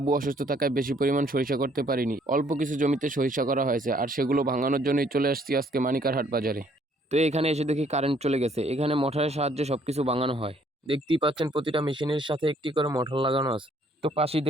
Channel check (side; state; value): both; normal; correlation 0.64